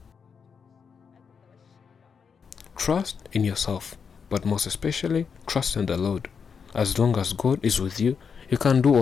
Trust in yourself, but most especially, trust in the Lord. As long as God is with you, you can do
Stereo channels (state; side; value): quieter; right; 6.2 dB